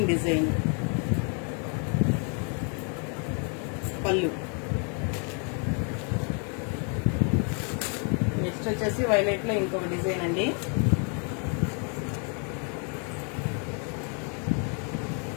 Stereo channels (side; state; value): right; quieter; 39.6 dB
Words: design. పళ్ళు నెక్స్ట్ వచ్చేసి వైలెట్ లో ఇంకొక డిజైన్ అండి.